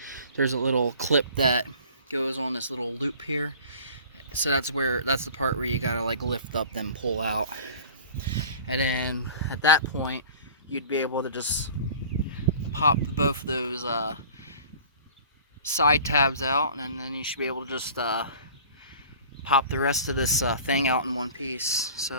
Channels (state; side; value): inverted; both; correlation -0.45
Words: there's a little clip that goes on this little loop here. So that's the part where you gotta like lift up, then pull out. And then at that point, you'd be able to just pop both of those side tabs out, and then you should be able to just pop the rest of this thing out in one piece.